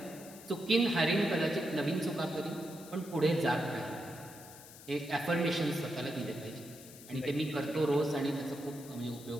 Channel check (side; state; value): left; noise; hiss, 17 dB below the sound